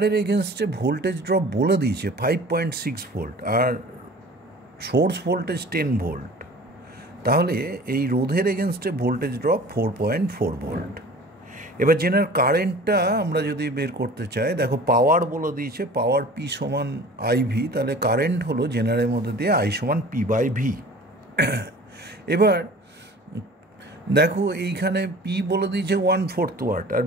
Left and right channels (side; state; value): both; normal; correlation 0.43